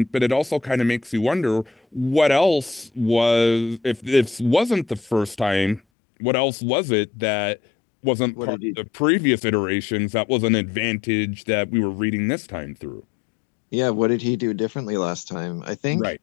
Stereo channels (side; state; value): right; drops out; at 5.8 s